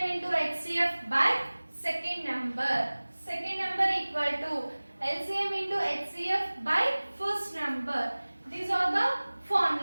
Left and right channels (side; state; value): both; inverted; correlation -1.00